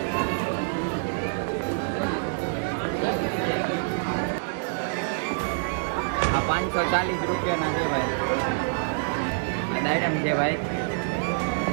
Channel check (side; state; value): left; silent; digital silence